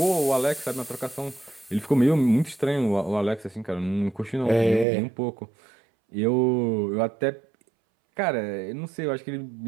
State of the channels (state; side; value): drops out; left; at 4.9 s